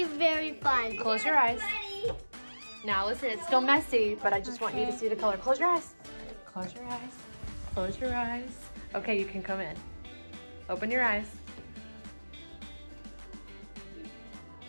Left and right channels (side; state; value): both; inverted; correlation -1.00